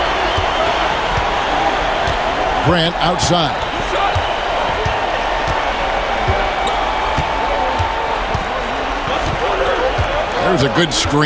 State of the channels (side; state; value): both; identical; correlation 1.00